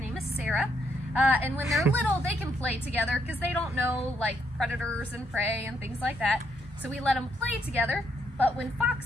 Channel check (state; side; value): normal; both; correlation 0.75